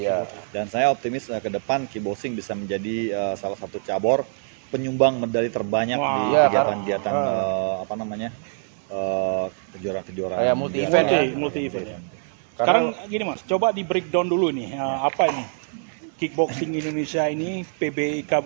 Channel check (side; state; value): left; silent; 61 dB below the other